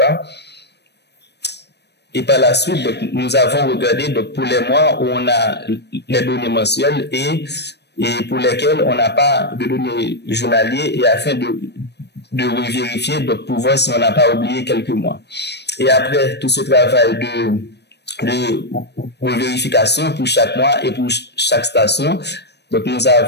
Et par la suite, donc, nous avons regardé donc, pour les mois où on a les données mensuelles et pour lesquelles on n'a pas de données journalières et afin de vérifier donc, pour voir si on n'a pas oublié quelques mois. Et après tout ce travail de vérification pour chaque mois et pour chaque station, donc, nous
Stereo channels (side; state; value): right; late; 0.49 ms